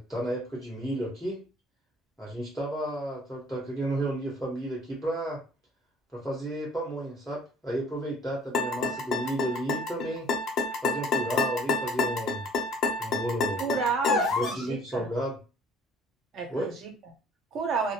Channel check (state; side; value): normal; both; correlation 0.53